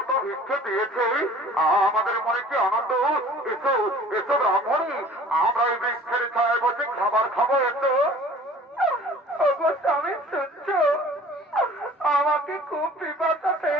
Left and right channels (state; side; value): normal; both; correlation 0.48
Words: ভিক্ষে দিয়েছে, আমাদের মনে কি আনন্দ। এসো এসো ব্রাহ্মণী, আমরা এই বৃক্ষের ছায় বসে খাবার খাবো। এসো। স্বামী শুনছ, আমাকে খুব পিপাসা